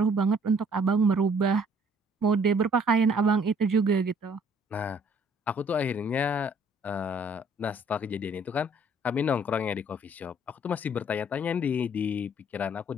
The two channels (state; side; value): normal; both; correlation 0.59